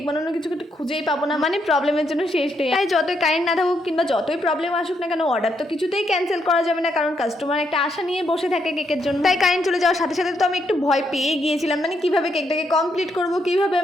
বানানোর কিছু খুঁজেই পাবো না। মানে প্রবলেমের জন্য শেষ নেই। তাই যতই কারেন্ট না থাকুক কিংবা যতই প্রবলেম আসুক না কেন, অর্ডার তো কিছুতেই ক্যান্সেল করা যাবে না, কারণ কাস্টমার একটা আশা নিয়ে বসে থাকে কেকের জন্য। তাই কারেন্ট চলে যাওয়ার সাথে সাথে তো আমি একটু ভয় পেয়ে গিয়েছিলাম, মানে কিভাবে কেকটাকে কমপ্লিট করবো, কিভাবে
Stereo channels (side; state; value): both; normal; correlation 0.77